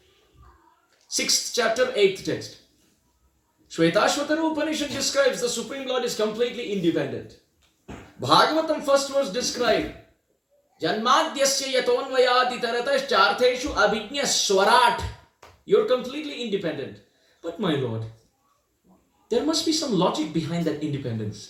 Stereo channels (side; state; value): both; identical; correlation 1.00